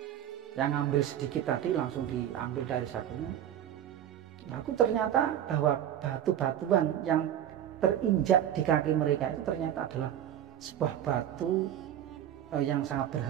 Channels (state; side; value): quieter; left; 10.7 dB